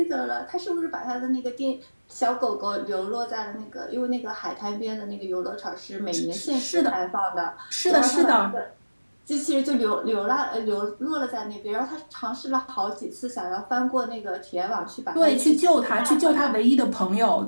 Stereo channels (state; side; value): inverted; both; correlation -1.00